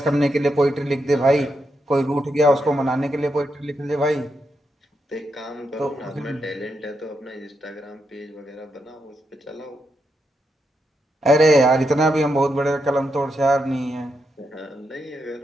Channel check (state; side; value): normal; both; correlation 0.83